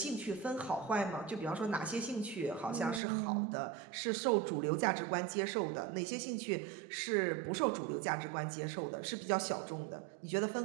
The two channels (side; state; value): left; drops out; at 3.0 s